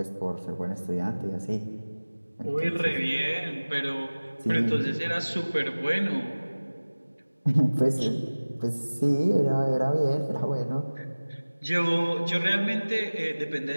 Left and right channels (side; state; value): both; inverted; correlation -1.00